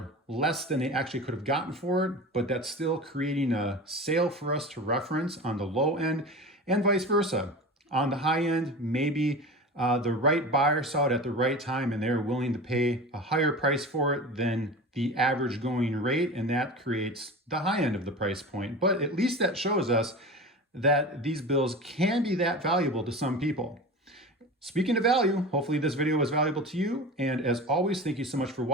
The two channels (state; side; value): normal; both; correlation 0.32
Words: less than they actually could have gotten for it, but that's still creating a sale for us to reference on the low end, and vice versa. On the high end, maybe the right buyer saw it at the right time and they're willing to pay a higher price for it than the average going rate, and that creates the high end of the price point. But at least that shows us that these bills can be that valuable to some people. Speaking of value, hopefully this video was valuable to you. And as always, thank you so much for